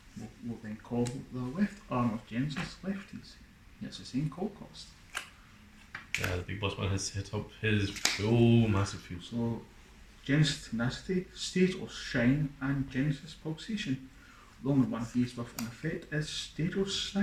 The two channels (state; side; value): identical; both; correlation 1.00